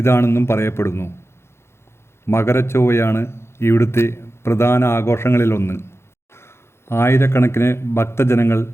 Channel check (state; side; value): late; right; 0.12 ms